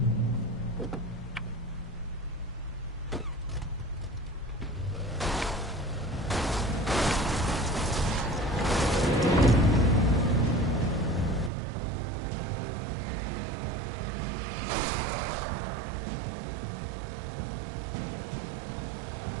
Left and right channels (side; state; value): left; drops out; at 11.5 s